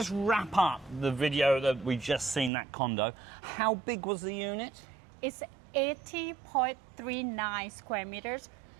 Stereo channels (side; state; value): left; drops out; at 2.5 s